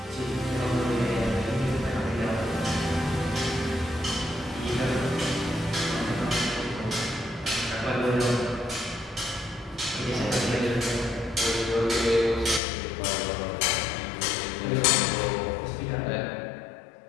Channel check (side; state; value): right; drops out; at 12.6 s